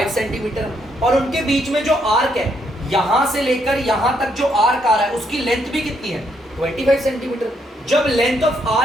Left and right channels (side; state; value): both; normal; correlation 0.74